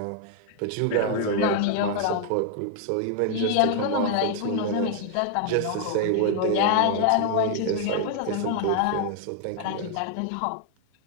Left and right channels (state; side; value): different; both; correlation 0.00